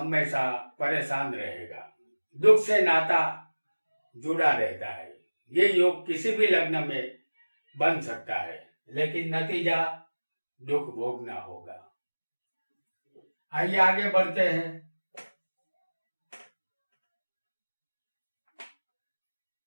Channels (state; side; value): inverted; both; correlation -1.00